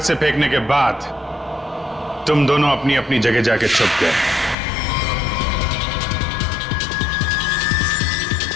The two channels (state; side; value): drops out; right; at 4.5 s